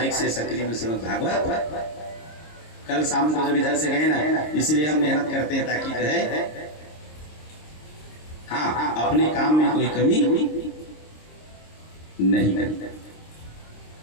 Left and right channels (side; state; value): right; late; 26 ms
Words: से सकरी में श्रीमद् भागवत। कल शाम को जब इधर से गए ना, इसलिए हम मेहनत करते हैं ताकि जो है हाँ अपने काम में कोई कमी नहीं करते।